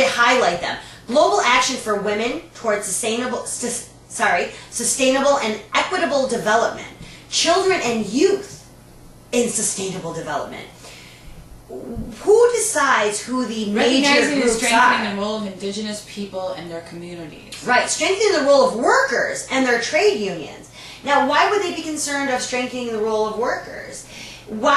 highlight them. Global action for women towards sustainable and equitable development. Children and youth in sustainable development. Who decides who the major Recognizing and groups strengthening are? the role of indigenous people and their communities. Right, strengthening the role of workers and their trade unions. Now, why would they be concerned of strengthening the role of workers?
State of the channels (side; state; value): both; identical; correlation 1.00